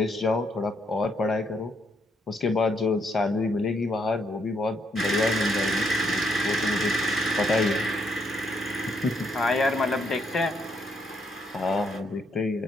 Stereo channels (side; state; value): both; normal; correlation 0.74